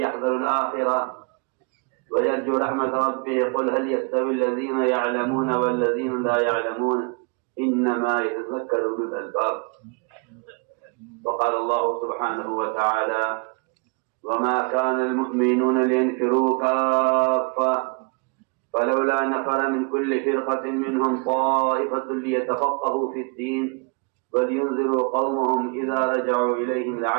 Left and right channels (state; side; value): quieter; left; 35.3 dB